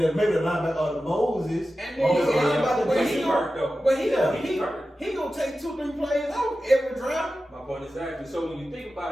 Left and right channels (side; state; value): both; normal; correlation 0.93